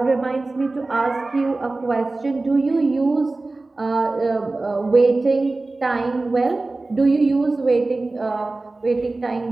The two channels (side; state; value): left; quieter; 3.2 dB